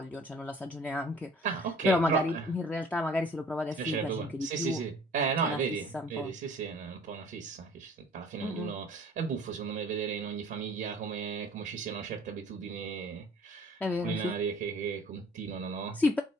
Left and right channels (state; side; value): normal; both; correlation 0.51